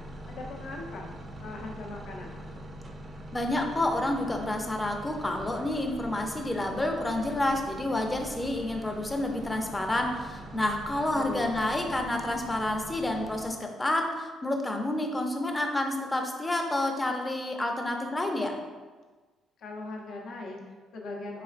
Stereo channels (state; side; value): normal; both; correlation 0.85